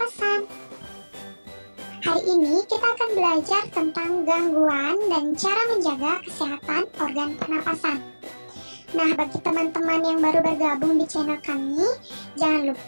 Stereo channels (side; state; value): both; inverted; correlation -1.00